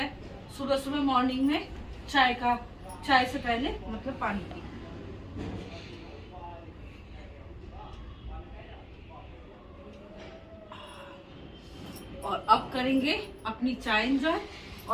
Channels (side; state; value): both; identical; correlation 1.00